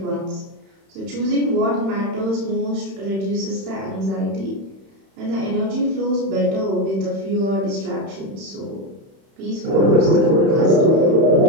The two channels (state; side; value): late; left; 31 ms